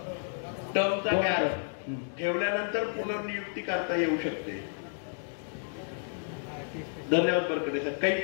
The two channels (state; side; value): silent; right; digital silence